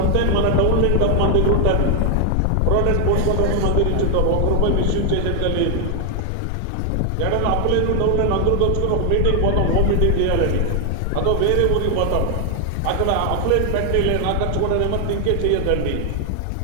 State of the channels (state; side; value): different; both; correlation 0.00